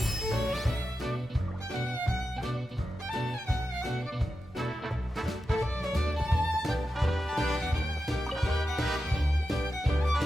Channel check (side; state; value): both; normal; correlation 0.90